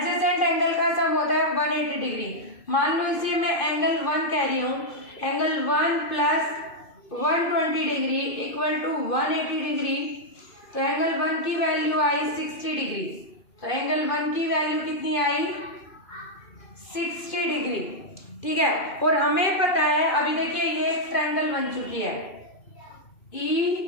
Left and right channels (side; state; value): right; late; 2.5 ms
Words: एंगल का सम होता है 180 डिग्री। मान लो इसे मैं एंगल 1 कह रही हूँ, angle 1 plus 120 degree equal to 180 degree, तो एंगल 1 की वैल्यू आई 60 डिग्री। तो एंगल 1 की वैल्यू कितनी आई 60 डिग्री, ठीक है। और हमें पता है अभी देखिए ये एक ट्रायंगल बन चुकी है